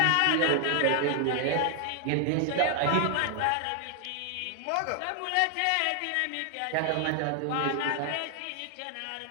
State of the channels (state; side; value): different; both; correlation 0.00